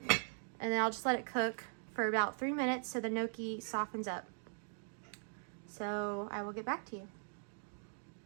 and then I'll just let it cook for about 3 minutes so the gnocchi softens up. So I will get back to you.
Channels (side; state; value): left; silent; digital silence